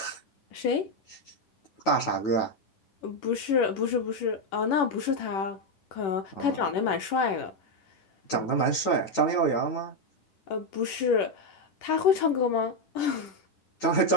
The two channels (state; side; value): late; right; 10 ms